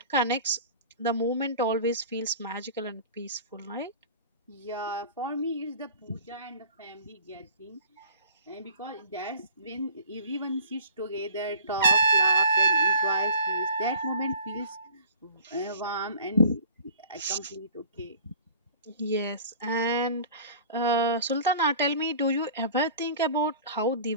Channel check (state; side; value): inverted; both; correlation -0.45